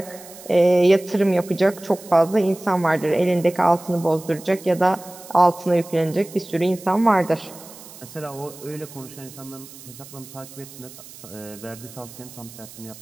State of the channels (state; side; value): noise; right; hiss, 18 dB below the sound